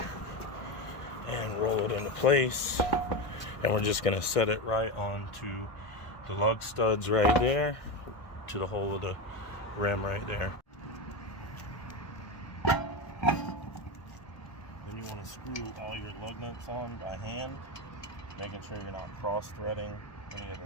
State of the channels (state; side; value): late; right; 1.7 ms